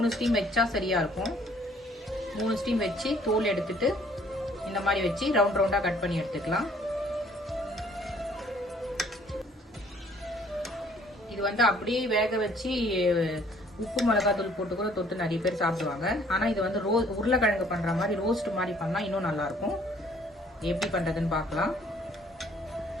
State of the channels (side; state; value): both; normal; correlation 0.60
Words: ஸ்டீம் வச்சா சரியா இருக்கும். 3 ஸ்டீம் வச்சு தோல் எடுத்துட்டு இந்த மாதிரி வச்சு ரவுண்ட் ரவுண்டா கட் பண்ணி எடுத்துக்கலாம். இது வந்து அப்படியே வேக வச்சு உப்பு மிளகாத்தூள் போட்டு கூட தொட்டு நிறைய பேர் சாப்பிடுவாங்க. ஆனா இது வந்து உருளைக்கிழங்கு பண்ற மாதிரி ரோஸ்ட் மாதிரி பண்ணா இன்னும் நல்லா இருக்கும். எப்படி பண்றதுன்னு பார்க்கலாம்.